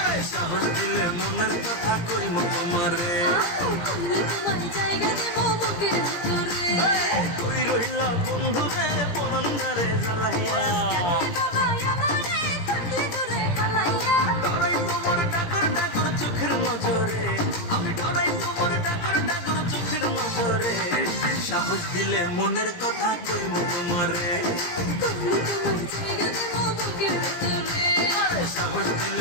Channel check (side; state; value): right; late; 17 ms